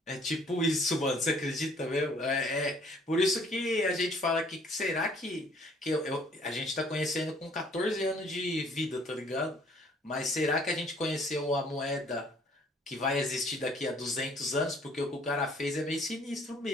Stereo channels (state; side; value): normal; both; correlation 0.59